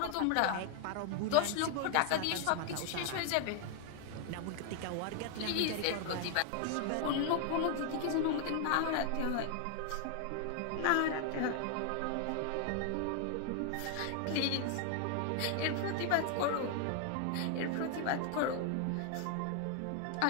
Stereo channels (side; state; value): both; different; correlation 0.00